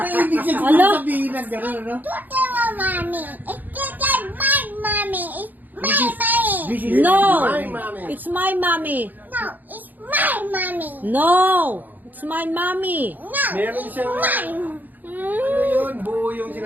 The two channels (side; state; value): left; late; 0.085 ms